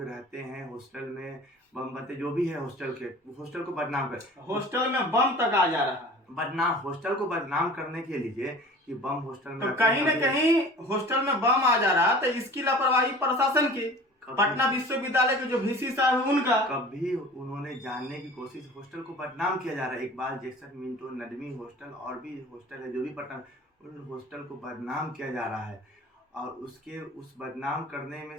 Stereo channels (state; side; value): normal; both; correlation 0.42